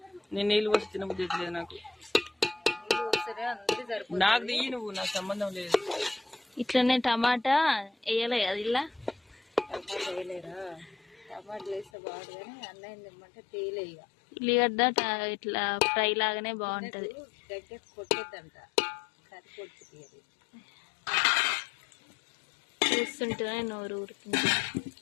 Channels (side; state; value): right; drops out; at 11.9 s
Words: నేను నీళ్ళు పోసి తినబుద్ధి లేదు నాకు. నాకు తీయి నువ్వు, నాకు సంబంధం లేదు. ఇట్లనే టమాటా వేయలే అది ఇలా ఉల్లిగడ్డ ఇట్లా ఫ్రై లాగానే బాగుంటది. చూస్తుంటేనే నోరు ఊరుతుంది.